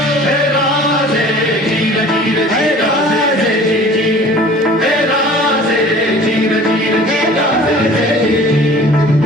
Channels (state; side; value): normal; both; correlation 0.47